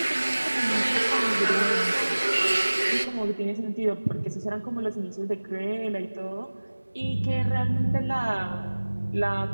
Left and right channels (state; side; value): inverted; both; correlation -1.00